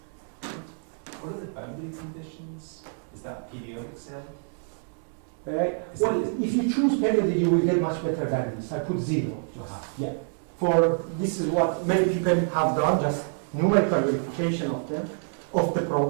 What are the boundary conditions? Is that periodic cell? Well, if you choose periodic, you will get much better values. I put 0. Yeah. For this is what many people have done, just numerical verification of them, of the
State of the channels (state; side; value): silent; left; 60 dB below the other